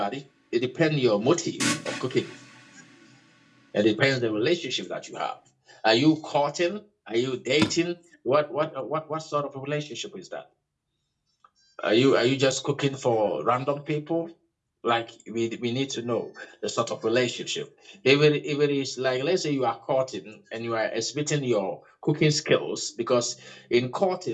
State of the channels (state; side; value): identical; both; correlation 1.00